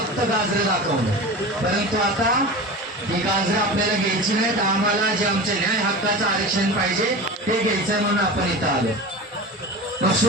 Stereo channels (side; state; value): both; normal; correlation 0.31